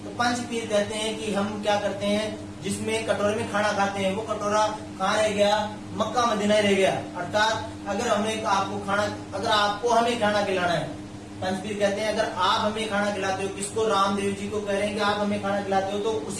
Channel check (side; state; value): both; identical; correlation 1.00